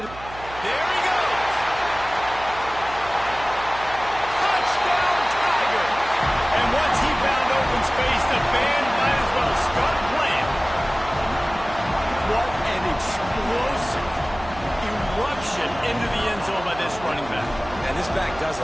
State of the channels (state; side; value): noise; right; hum, 16 dB below the sound